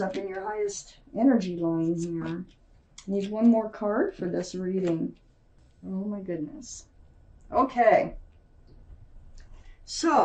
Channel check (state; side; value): identical; both; correlation 1.00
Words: up in your highest energy line here. Need one more card for this reading. Oh my goodness. Okay.